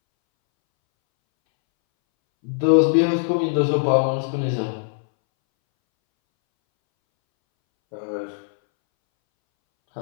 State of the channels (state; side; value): silent; right; 64 dB below the other